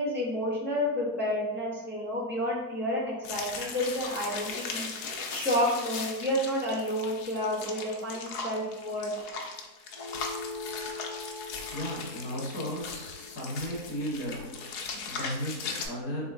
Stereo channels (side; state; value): right; late; 4.7 ms